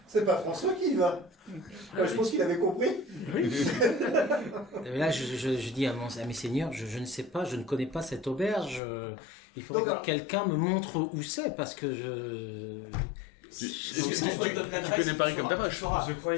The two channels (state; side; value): drops out; right; at 8.8 s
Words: C'est pas François qui y va. Je pense qu'il avait compris. Et là, je dis à mes seigneurs, je ne sais pas, je ne connais pas cette auberge. Il faudrait Donc, que quelqu'un me montre où c'est, parce que je... Tu connais Paris comme ta poche. Je croyais